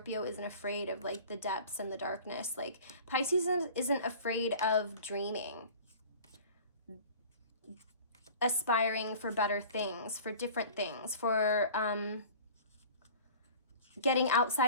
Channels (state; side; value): inverted; both; correlation -0.43